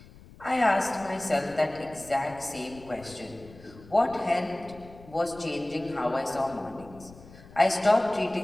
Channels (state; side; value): noise; left; rumble, 21 dB below the sound